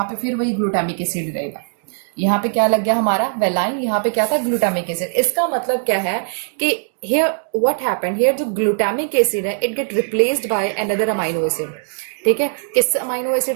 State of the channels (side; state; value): left; silent; digital silence